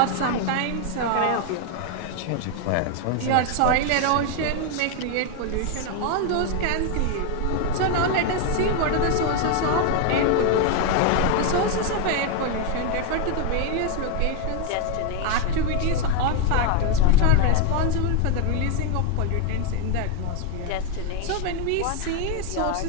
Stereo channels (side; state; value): both; different; correlation 0.01